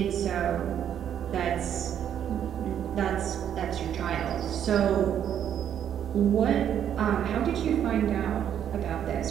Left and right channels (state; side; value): quieter; left; 9.5 dB